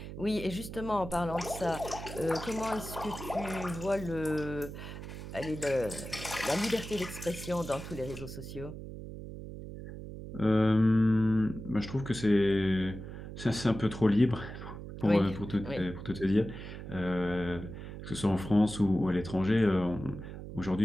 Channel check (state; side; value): noise; right; hum, 10 dB below the sound